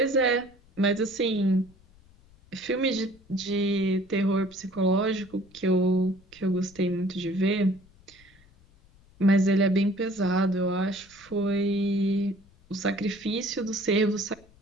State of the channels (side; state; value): left; noise; rumble, 28 dB below the sound